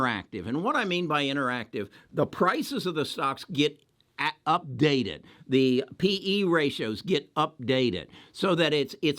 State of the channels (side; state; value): both; identical; correlation 1.00